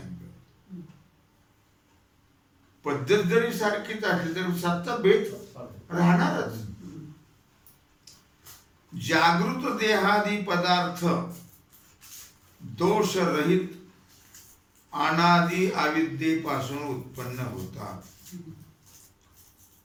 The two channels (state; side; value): identical; both; correlation 1.00